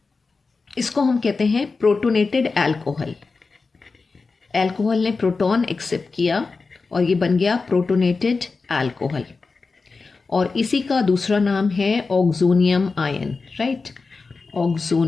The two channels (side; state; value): right; quieter; 4.2 dB